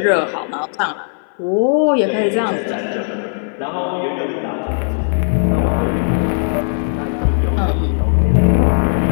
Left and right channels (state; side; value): silent; right; 59 dB below the other